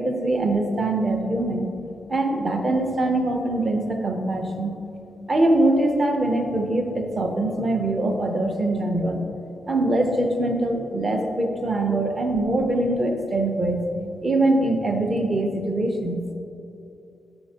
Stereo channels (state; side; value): normal; both; correlation 0.79